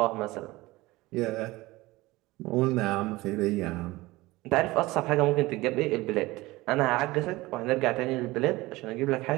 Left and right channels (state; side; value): quieter; left; 20.0 dB